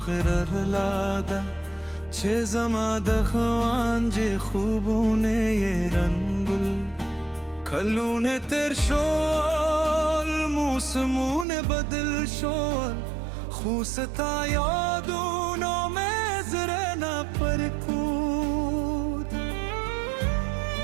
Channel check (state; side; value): drops out; left; at 11.5 s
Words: غرر لاده چه زما دخوان جه خوبونه ی رنگل کلونه تر شول موسمونه بدل شول خوستا یادونو مزرنا پرکود